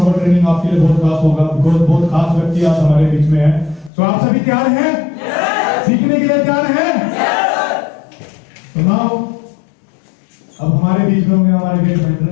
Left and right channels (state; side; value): drops out; right; at 3.9 s